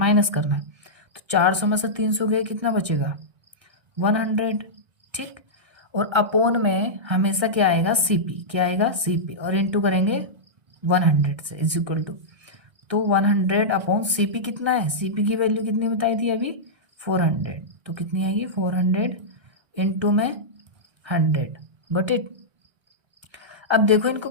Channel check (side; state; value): left; late; 1.6 ms